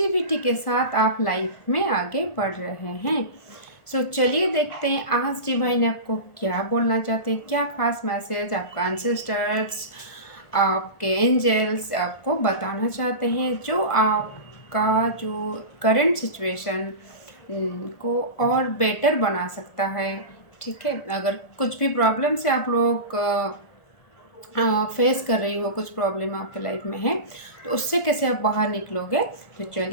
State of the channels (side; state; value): right; late; 1.4 ms